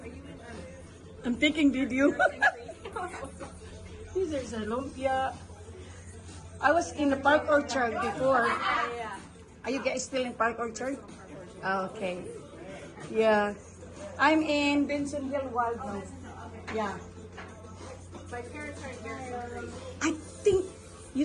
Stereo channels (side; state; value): both; identical; correlation 1.00